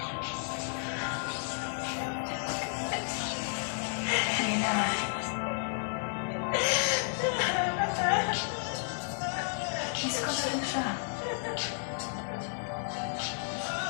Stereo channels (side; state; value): right; silent; 56 dB below the other